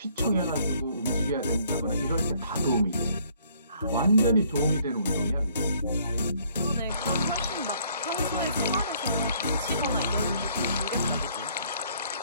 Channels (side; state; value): both; inverted; correlation -0.63